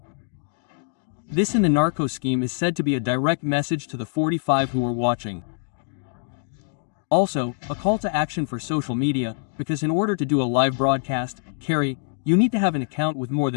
This in the narco scheme is said to be a direct message to the 45 who are watching. Also, a call to action for social media, because in order to do a live broadcast, Carrie, you need to have an account with more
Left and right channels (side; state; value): right; silent; digital silence